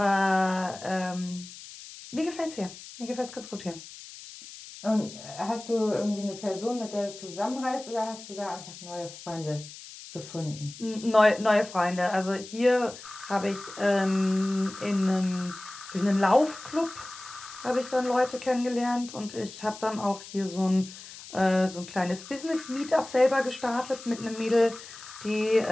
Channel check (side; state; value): left; noise; hiss, 15 dB below the sound